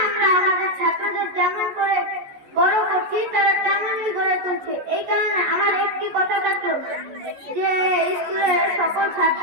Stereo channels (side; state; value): left; late; 14 ms